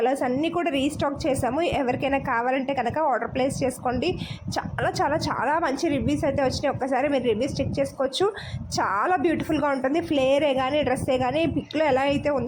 అన్నీ కూడా రీస్టాక్ చేసాము. ఎవరికైనా కావాలంటే కనుక ఆర్డర్ ప్లేస్ చేసుకోండి. చాలా చాలా చాలా మంచి రివ్యూస్ అయితే వచ్చినాయి. ఒక్కసారి మీరు రివ్యూస్ చెక్ చేసుకోవచ్చు. చాలా బ్యూటిఫుల్గా ఉంటుంది. ఫ్లేరే కానీ డ్రెస్సే కానీ పిక్లో ఎలా అయితే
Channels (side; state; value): both; identical; correlation 1.00